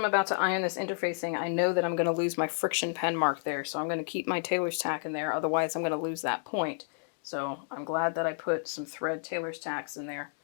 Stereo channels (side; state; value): right; silent; digital silence